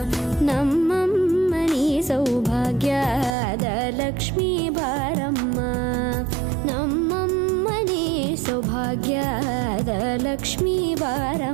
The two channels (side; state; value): left; drops out; at 3.4 s